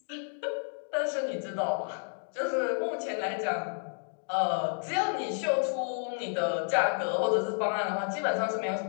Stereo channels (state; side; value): silent; right; 57 dB below the other